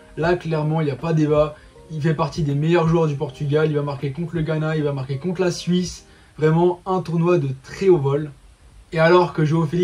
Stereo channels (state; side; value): identical; both; correlation 1.00